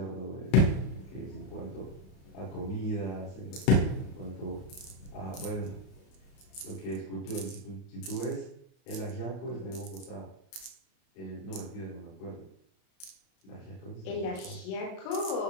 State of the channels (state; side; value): late; right; 32 ms